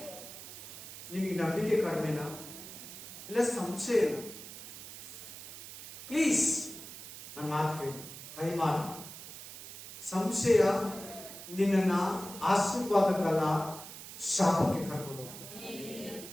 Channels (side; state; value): right; noise; hiss, 13 dB below the sound